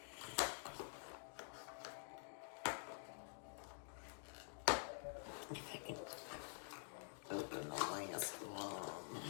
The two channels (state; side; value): silent; right; digital silence